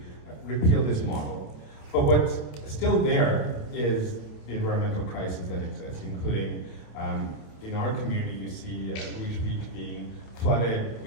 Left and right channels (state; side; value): late; right; 27 ms